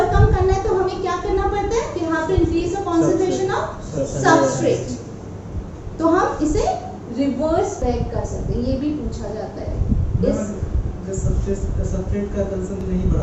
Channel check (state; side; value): identical; both; correlation 1.00